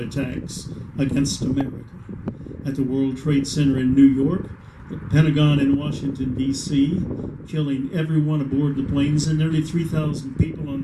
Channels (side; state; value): both; identical; correlation 1.00